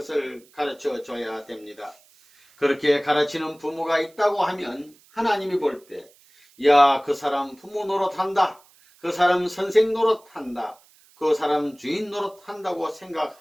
가르쳐 줘야 됩니다. 그렇게 가르치는 부모가 있다고 하면 하나님이 볼 때, 야, 그 사람 부모 노릇한다. 그 사람 선생 노릇한다. 그 사람 주인 노릇한다고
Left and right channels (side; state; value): right; noise; hiss, 29 dB below the sound